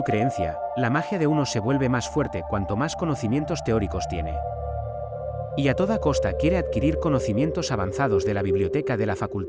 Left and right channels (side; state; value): both; identical; correlation 1.00